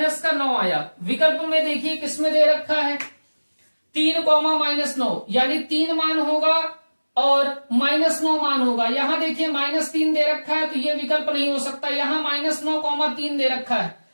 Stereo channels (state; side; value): inverted; both; correlation -1.00